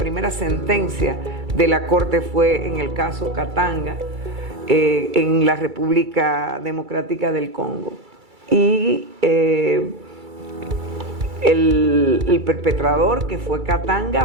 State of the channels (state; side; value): late; left; 2.3 ms